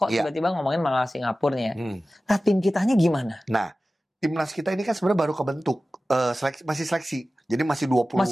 tiba-tiba ngomongin malah Singapura nih ya. Nah tim kitanya gimana? Nah, timnas kita ini kan sebenarnya baru kebentuk, masih seleksi, jadi masih 20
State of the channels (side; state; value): both; normal; correlation 0.96